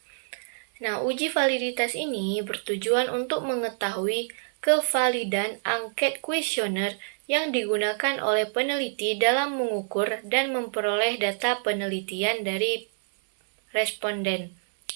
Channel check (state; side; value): silent; left; 60 dB below the other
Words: Nah, uji validitas ini bertujuan untuk mengetahui kevalidan angket kuesioner yang digunakan oleh peneliti dalam mengukur dan memperoleh data penelitian dari responden.